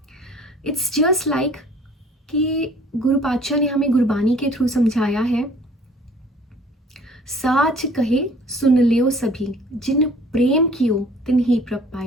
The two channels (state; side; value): normal; both; correlation 0.52